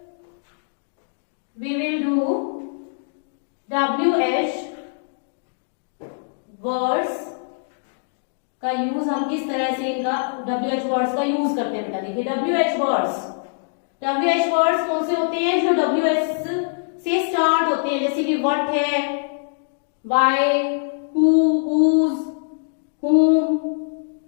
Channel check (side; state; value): right; silent; digital silence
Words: we will do WH words का यूज, हम किस तरह से इनका WH वर्ड्स का यूज करते हैं बेटा। देखिए WH वर्ड्स कौन से होते हैं, जो WH से स्टार्ट होते हैं, जैसे कि व्हाट है, why, who, whose, whom,